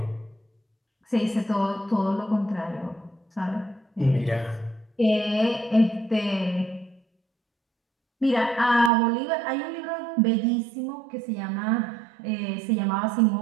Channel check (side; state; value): left; drops out; at 8.9 s